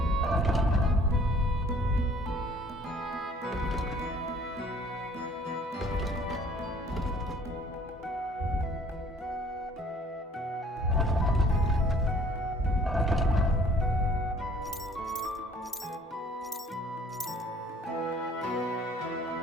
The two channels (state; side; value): normal; both; correlation 0.55